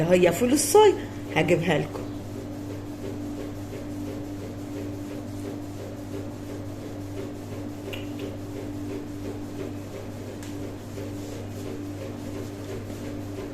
هي فول الصويا، هجيبها لكم.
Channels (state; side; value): identical; both; correlation 1.00